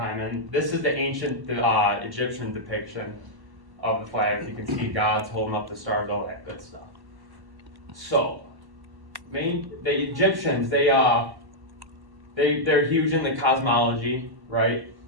and this is the ancient Egyptian depiction of the flat earth. You can see gods holding up the stars, all that good stuff. So, the Egyptians, they're huge in the cosmology, right?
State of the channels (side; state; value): left; late; 1.1 ms